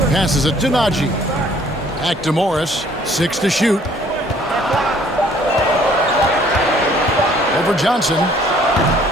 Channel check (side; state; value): both; normal; correlation 0.58